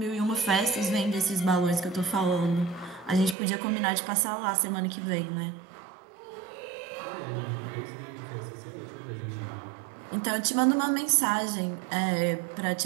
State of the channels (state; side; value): drops out; left; at 3.4 s